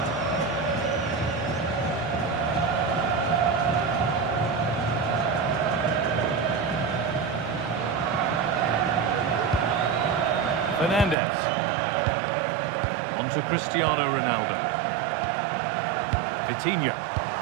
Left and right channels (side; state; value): left; drops out; at 11.2 s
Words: Fernandez. On to Cristiano Ronaldo. Vitinha.